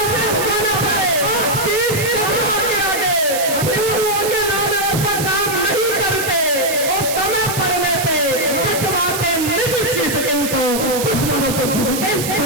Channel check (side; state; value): right; noise; hiss, 5 dB below the sound